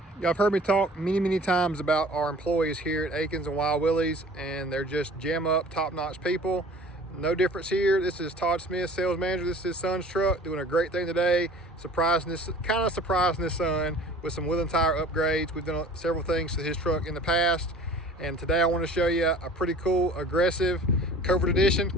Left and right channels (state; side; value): normal; both; correlation 0.46